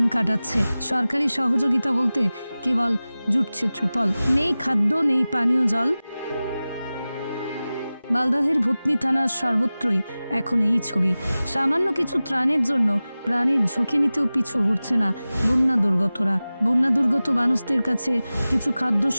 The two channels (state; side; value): inverted; both; correlation -0.97